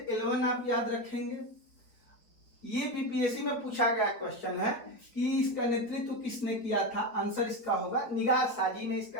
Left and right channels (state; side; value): late; right; 4.3 ms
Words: 11 आप याद रखेंगे, ये बीपीएससी में पूछा गया क्वेश्चन है कि इसका नेतृत्व किसने किया था, आंसर इसका होगा निगार साजी ने